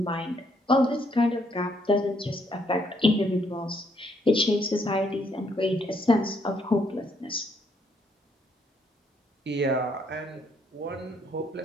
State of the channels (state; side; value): normal; both; correlation 0.71